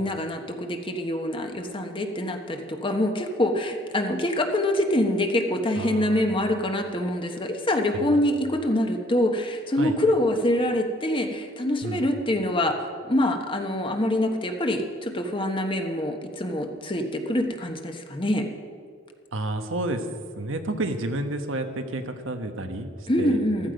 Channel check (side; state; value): both; normal; correlation 0.62